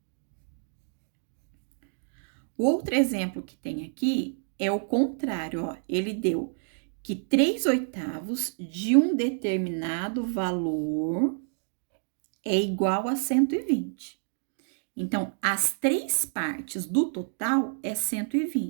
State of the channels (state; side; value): silent; left; digital silence